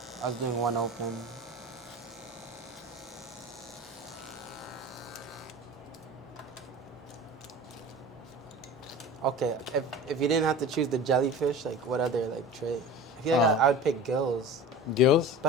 I was doing one open. Okay, if you didn't have to choose the jellyfish, like what other like trait? I feel like I would pick gills, Gills?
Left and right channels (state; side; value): normal; both; correlation 0.36